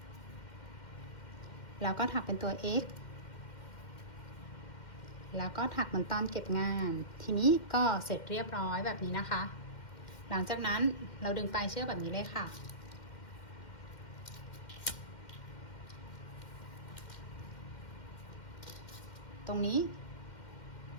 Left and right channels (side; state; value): right; late; 2.1 ms